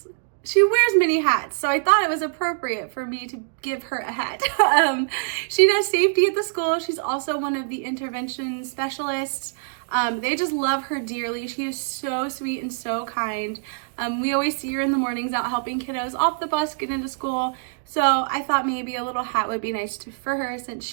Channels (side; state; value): left; silent; digital silence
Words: She wears many hats, so I thought it was appropriate for me to give her a hat. She does safety at the school. She's also one of the intervention specialists. They just love her dearly. She is so sweet and so kind. We always see her in the mornings out helping kiddos off the bus, get into school. So I thought maybe a little hat would be nice for her since